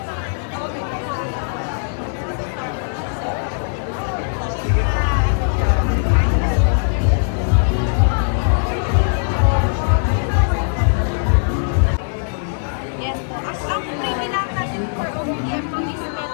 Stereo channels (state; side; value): silent; right; digital silence